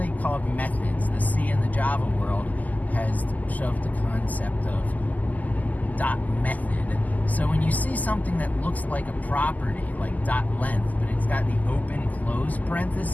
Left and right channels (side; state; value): right; late; 0.079 ms